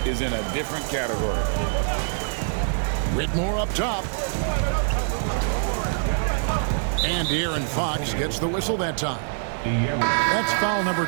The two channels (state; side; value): silent; left; digital silence